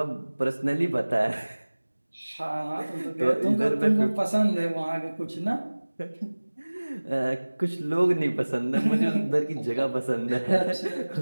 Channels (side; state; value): both; inverted; correlation -1.00